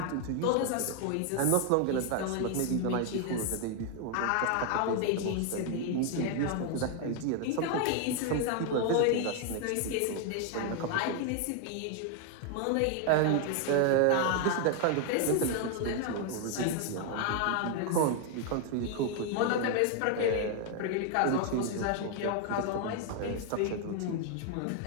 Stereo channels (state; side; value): different; both; correlation 0.00